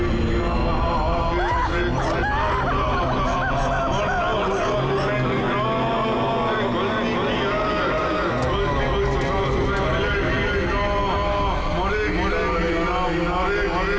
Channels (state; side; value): identical; both; correlation 1.00